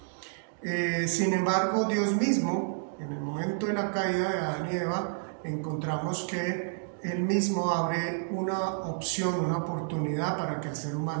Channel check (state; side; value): silent; left; digital silence